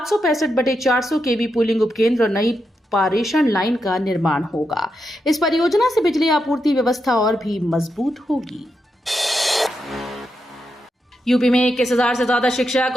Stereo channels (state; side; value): normal; both; correlation 0.85